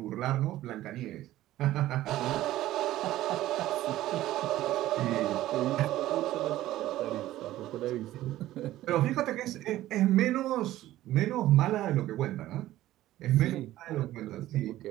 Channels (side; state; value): left; quieter; 14.8 dB